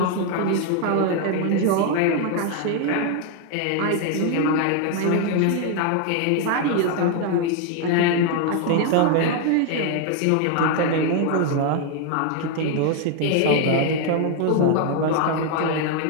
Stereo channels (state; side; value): different; both; correlation 0.00